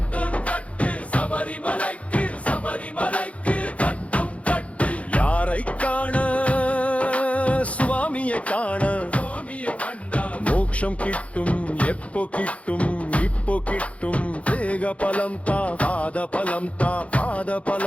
கட்டு சபரிமலைக்கு சபரிமலைக்கு கட்டும் கட்டு யாரை காண சுவாமியை காண சுவாமியை கண்டா மோட்சம் கிட்டும் எப்போ கிட்டும் இப்போ கிட்டும் தேக பலம் தா பாத பலம் தா பாத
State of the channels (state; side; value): late; right; 0.064 ms